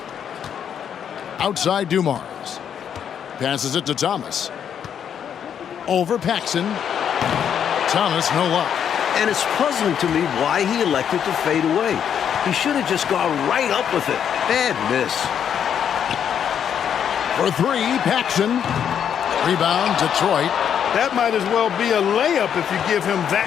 Outside Dumars. Passes it to Thomas. Over Paxson. Thomas, no luck. And it's puzzling to me why he elected to fade away. He should have just gone right up with it. Bad miss. For 3, Paxson. Rebound, Detroit. That might as well be a layup if you give him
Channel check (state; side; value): quieter; right; 8.5 dB